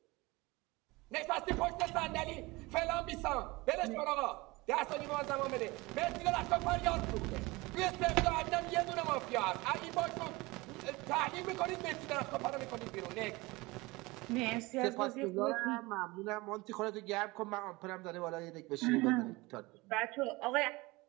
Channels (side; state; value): left; quieter; 22.8 dB